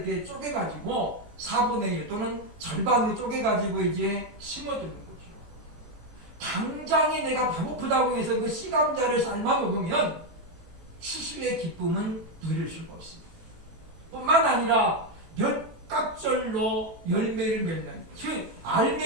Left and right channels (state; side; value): late; left; 18 ms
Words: 쪼개가지고 4분의 1 또는 절반으로 쪼개가지고 이제 심어두는 거죠. 당장에 내가 배고프다고 해서 그 씨감자를 삶아 먹으면 추수의 기쁨은 누릴 수가 없습니다. 뿐만 아니라 몇 갑절로 열매를 맺는 그